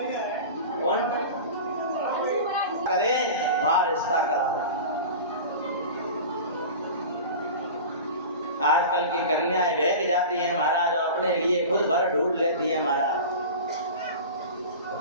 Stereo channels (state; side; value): inverted; both; correlation -0.33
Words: कौन करे वहां रिश्ता कराओ। आजकल की कन्याएं बहक जाती हैं महाराज और अपने लिए खुद भर ढूंढ लेती हैं महाराज।